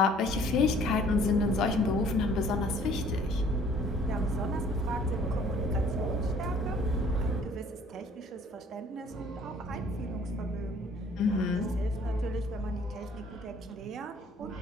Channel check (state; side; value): normal; both; correlation 0.56